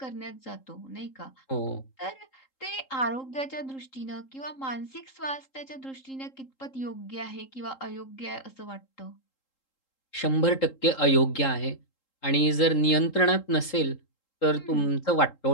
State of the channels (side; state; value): right; late; 3.8 ms